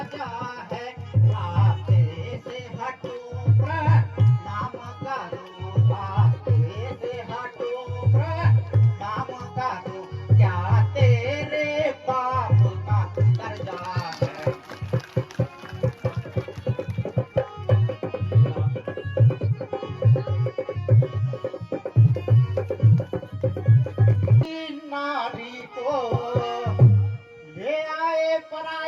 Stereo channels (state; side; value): identical; both; correlation 1.00